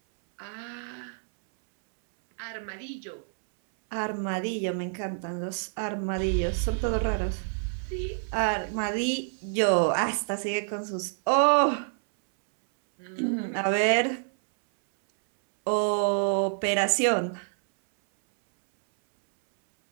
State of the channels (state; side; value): silent; left; 60 dB below the other